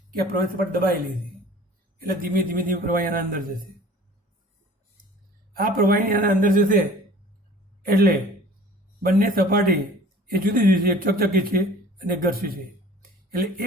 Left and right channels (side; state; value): both; normal; correlation 0.46